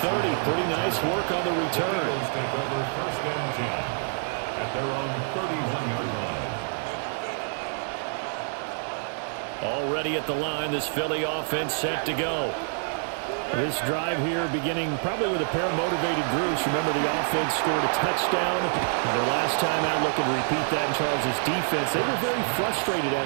Pretty nice work on the return. The Eagles take over 1st and 10 at their own 31-yard line. Already at the line, this Philly offense set to go. This drive here beginning probably with a pair of motivated groups. Remember, the offense scored a touchdown on their last time out. Looking to repeat that in Charles' defense. They were very frustrated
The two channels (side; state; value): left; silent; 60 dB below the other